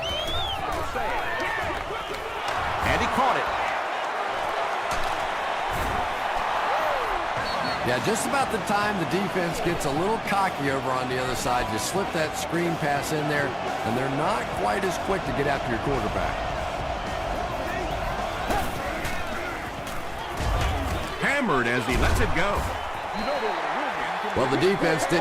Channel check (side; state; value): both; identical; correlation 1.00